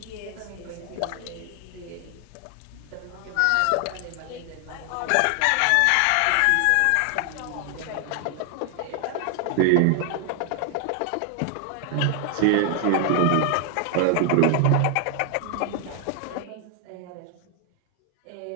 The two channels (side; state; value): both; different; correlation 0.00